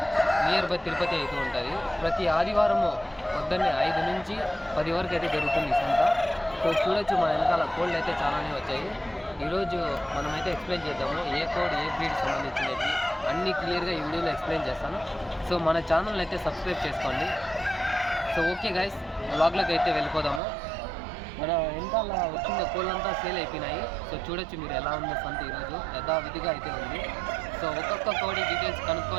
near by Tirupati అయితే ఉంటుంది. ప్రతి ఆదివారము పొద్దున్నే 5 నుంచి 10 వరకు అయితే జరుగుతుంది ఈ సంత. సో చూడొచ్చు, మన వెనకాల కోళ్ళు అయితే చాలానే వచ్చాయి. ఈరోజు మనమైతే ఎక్స్ప్లెయిన్ చేద్దాము ఏ కోడ్ ఏ బ్రీడ్ సంబంధించినవి అన్నీ క్లియర్గా ఈ వీడియోలో ఎక్స్ప్లెయిన్ చేస్తాను. సో మన ఛానల్ని అయితే సబ్స్క్రైబ్ చేసుకోండి. సో ఓకే గైస్, వ్లాగ్లోకి అయితే వెళ్ళిపోదాము. మన వెనకాల వచ్చిన కోళ్ళంతా సేల్ అయిపోయినాయి. సో చూడొచ్చు మీరు ఎలా ఉందో సంత ఈరోజు యథావిధిగా అయితే ఉంది. సో ఒక్కొక్క కోడి డీటెయిల్స్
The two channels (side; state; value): left; drops out; at 20.4 s